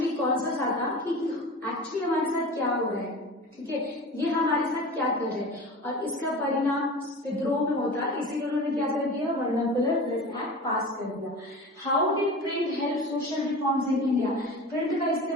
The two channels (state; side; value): normal; both; correlation 0.34